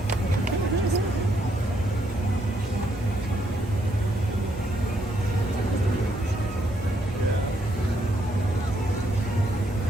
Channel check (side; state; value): both; normal; correlation 0.74